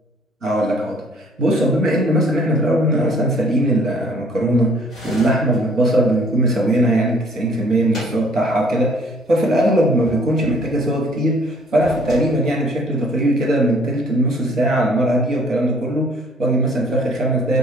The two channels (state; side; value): normal; both; correlation 0.59